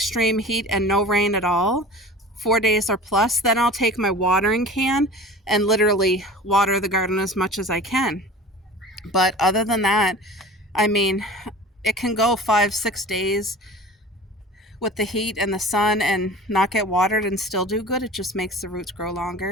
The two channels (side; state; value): both; normal; correlation 0.39